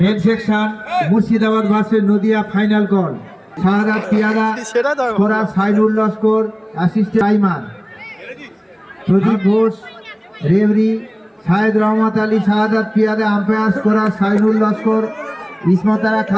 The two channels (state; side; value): identical; both; correlation 1.00